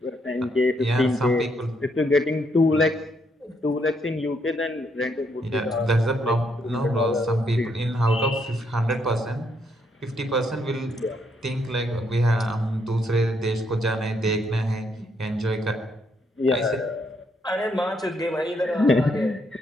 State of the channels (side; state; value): both; normal; correlation 0.74